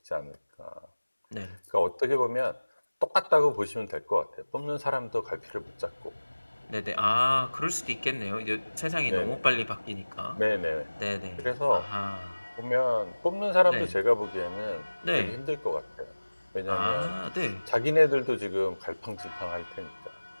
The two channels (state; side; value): inverted; both; correlation -1.00